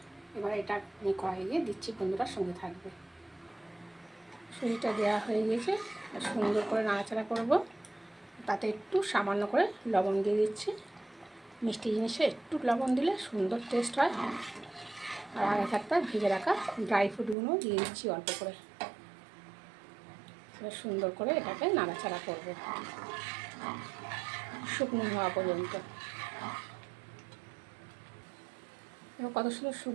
এবার এটা আমি কড়াইয়ে দিচ্ছি। বন্ধুরার সঙ্গে থাকবে। সুজিটা দেওয়া হয়ে গিয়েছে। সুন্দর করে নাড়াচাড়া করব। তাতে একটু সামান্য করে লবণ দিয়ে দিচ্ছি। মিষ্টি জিনিসে একটু লবণ দিলে সুন্দর টেস্ট হয়। আর আগে থাকতে ভেজে রাখা ড্রাই ফ্রুটগুলো দিয়ে দিচ্ছি অল্প করে। সুন্দর করে এটাকে নাড়াচাড়া করব শুকনো হওয়া পর্যন্ত। কত সুন্দর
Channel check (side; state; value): left; drops out; at 17.4 s